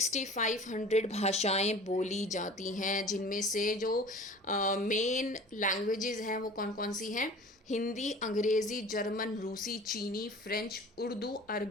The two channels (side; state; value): both; normal; correlation 0.42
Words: भाषाएं बोली जाती हैं, जिनमें से जो मेन लैंग्वेजेस हैं वो कौन कौन सी हैं? हिंदी, अंग्रेज़ी, जर्मन, रूसी, चीनी, फ्रेंच, उर्दू,